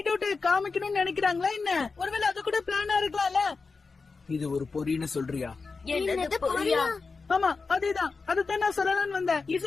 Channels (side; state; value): right; quieter; 4.4 dB